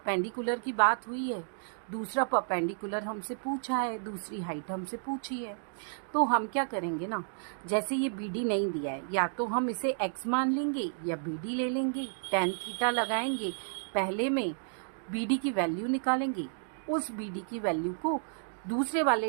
की बात हुई है, दूसरा परपेंडिकुलर हमसे पूछा है, दूसरी हाइट हमसे पूछी है, तो हम क्या करेंगे ना, जैसे ये बी डी नहीं दिया है, या तो हम इसे x मान लेंगे या बी डी ले लेंगे, tan थीटा लगाएंगे, पहले में बी डी की वैल्यू निकालेंगे, उस बी डी की वैल्यू को दूसरे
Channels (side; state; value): left; silent; digital silence